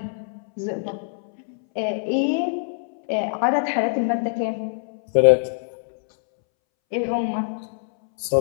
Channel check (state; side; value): silent; right; 63 dB below the other